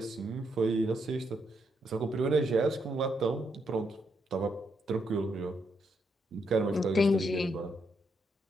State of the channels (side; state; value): both; normal; correlation 0.78